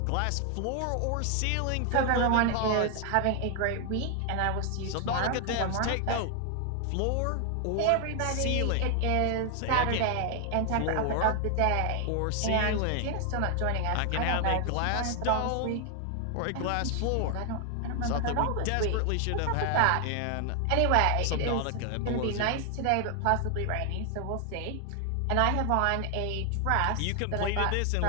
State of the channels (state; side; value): different; both; correlation 0.00